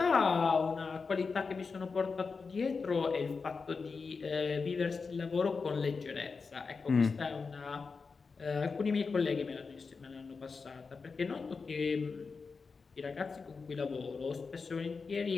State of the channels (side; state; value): right; quieter; 4.8 dB